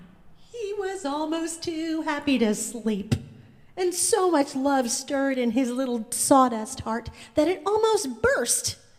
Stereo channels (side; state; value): both; identical; correlation 1.00